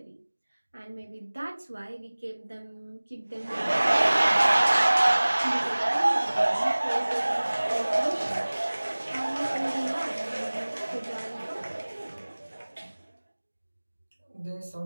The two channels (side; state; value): both; inverted; correlation -1.00